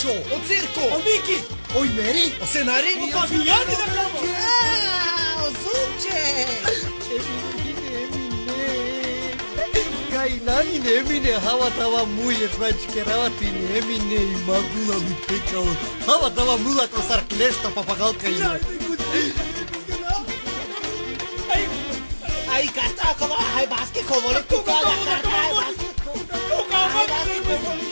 O circo! O Miki. Oi Meri. O scenari? O Fabiani da cama. O zupce. Nani nemine hava tava muye prachkeravati nemine magula mi pekao hava tava mula kosar klesta papagalka ina Ai karta akova hai baske kovole tu kala karta hai baske.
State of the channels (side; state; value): both; inverted; correlation -1.00